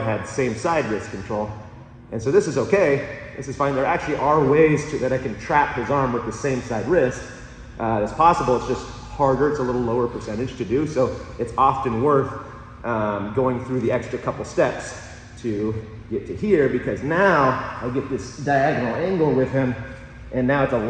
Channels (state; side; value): identical; both; correlation 1.00